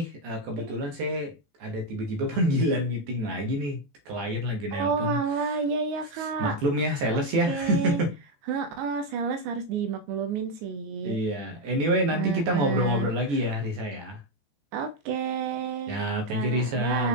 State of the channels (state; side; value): late; left; 14 ms